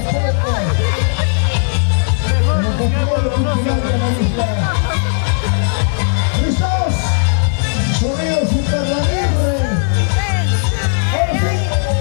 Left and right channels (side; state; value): right; silent; digital silence